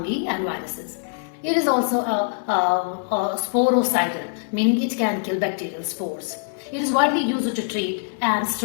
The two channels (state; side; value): silent; right; 63 dB below the other